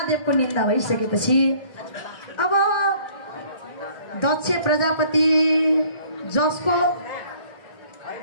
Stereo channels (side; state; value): right; late; 1.4 ms